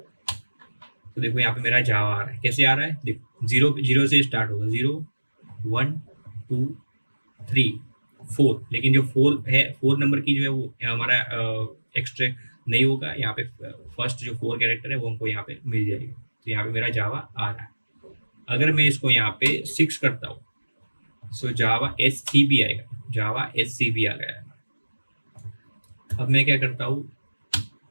तो देखो यहाँ पे मेरा जावा आ रहा है, कैसे आ रहा है, देखो 0 से स्टार्ट होगा, 0 1 2 3 4, लेकिन जो 4 नंबर की जो है वो हमारा एक्सट्रैक्ट नहीं होगा। यहाँ पे फर्स्ट जो 4 कैरेक्टर है वो हमको यहाँ पे मिल जाएगी, तो यहाँ पे मेरा जावा आ रहा है। अगर मैं इसको यहाँ पे 6 करता हूँ, सो जावा SCB आएगा, जावा SCB आ गया है। अब मैं क्या करता हूँ,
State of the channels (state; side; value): inverted; both; correlation -1.00